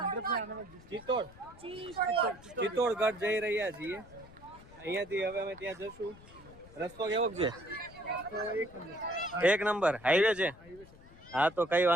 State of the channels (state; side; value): noise; left; rumble, 21 dB below the sound